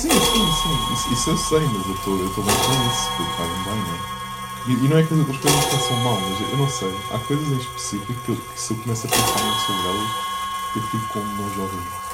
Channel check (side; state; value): both; identical; correlation 1.00